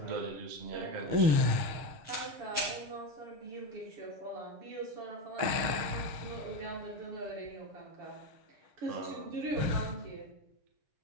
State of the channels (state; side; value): late; left; 6.5 ms